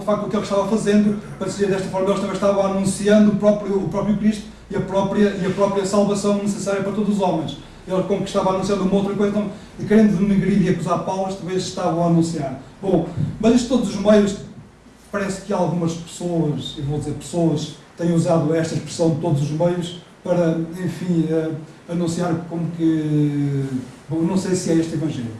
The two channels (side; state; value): both; identical; correlation 1.00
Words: facto o que ele estava fazendo, para dizer desta forma, eles também estavam anunciando o próprio Cristo e a própria salvação necessária para todos os homens. Ele, como que estava anunciando uma outra coisa, então, querendo denegrir e acusar Paulo, talvez estavam a anunciar. Bom, mas isto todos os meios, parece que algumas pessoas, e vou dizer pessoas, têm usado esta expressão de todos os meios para, enfim, anunciar como que... Bom, não sei se é este Evangelho.